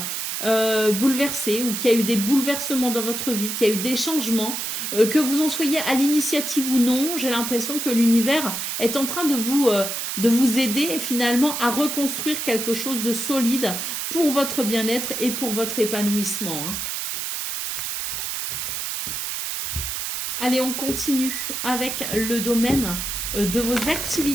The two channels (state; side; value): noise; right; hiss, 3 dB below the sound